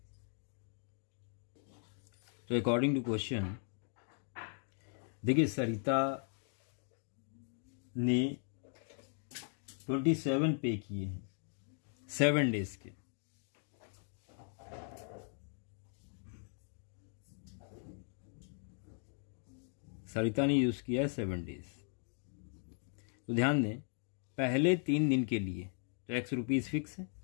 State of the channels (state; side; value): silent; right; 52 dB below the other